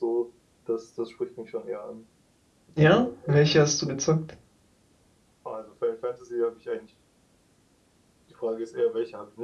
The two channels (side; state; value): both; identical; correlation 1.00